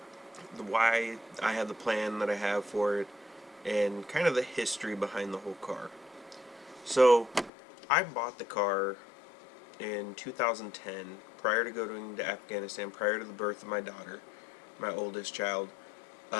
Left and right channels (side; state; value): right; drops out; at 7.5 s